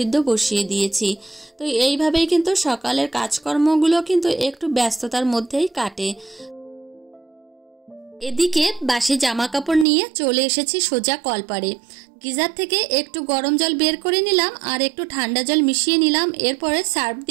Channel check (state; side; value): drops out; left; at 9.9 s